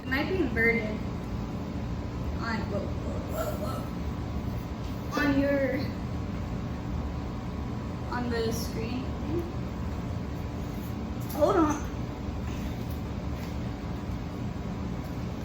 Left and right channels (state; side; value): identical; both; correlation 1.00